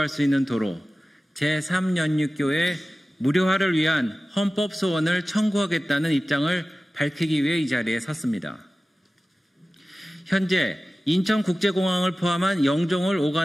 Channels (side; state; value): both; normal; correlation 0.96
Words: 수 있는 도로 제3연육교의 무료화를 위한 헌법 소원을 청구하겠다는 입장을 밝히기 위해 이 자리에 섰습니다. 현재 인천국제공항을 포함한 영종을